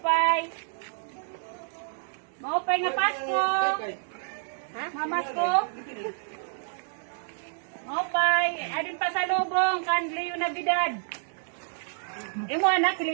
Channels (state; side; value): silent; left; digital silence